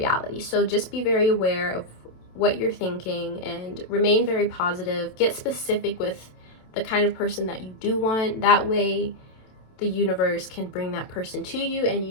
So just be very aware of what you're thinking and remain very positive. Get specific with the kind of person that you do want. That way the universe can bring that person to you, and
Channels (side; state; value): right; late; 27 ms